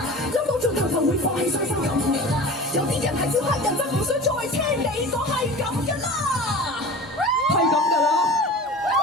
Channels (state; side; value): normal; both; correlation 0.36